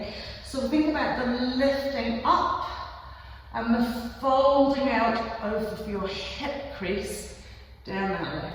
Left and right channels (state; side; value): identical; both; correlation 1.00